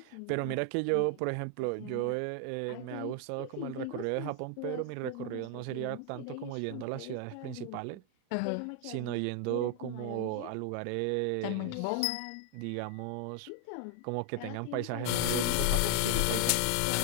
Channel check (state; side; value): different; both; correlation 0.00